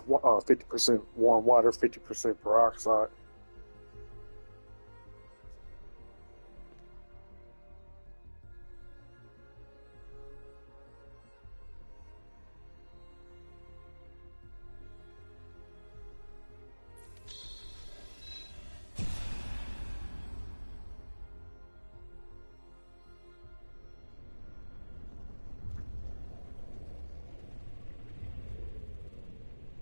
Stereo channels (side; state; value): both; inverted; correlation -1.00